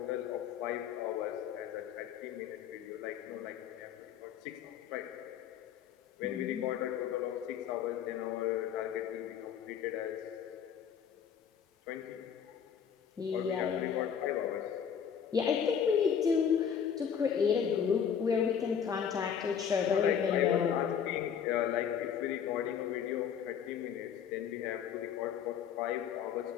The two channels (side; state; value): right; quieter; 8.0 dB